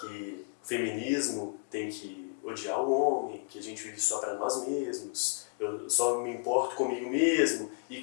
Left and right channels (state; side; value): quieter; right; 37.5 dB